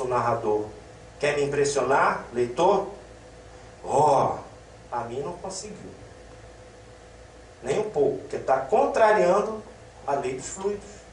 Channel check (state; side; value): identical; both; correlation 1.00